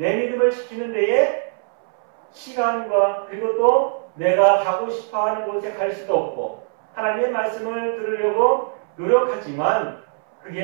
믿음을 지키는 데에 시간과 그리고 또 내가 가고 싶어하는 곳에 갈 수도 없고 하나님의 말씀을 들으려고 노력하지만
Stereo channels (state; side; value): silent; left; 65 dB below the other